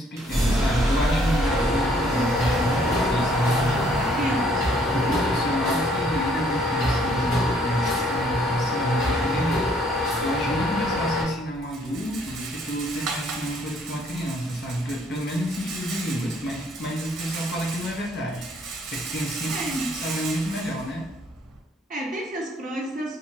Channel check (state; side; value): normal; both; correlation 0.64